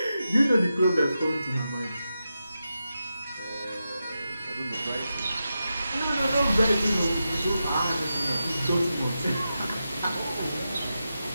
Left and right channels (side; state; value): both; inverted; correlation -0.89